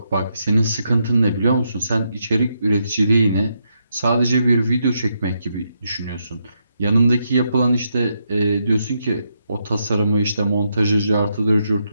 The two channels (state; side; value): inverted; both; correlation -0.81